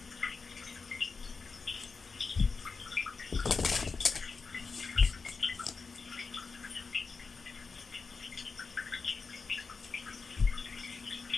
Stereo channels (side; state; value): right; quieter; 4.7 dB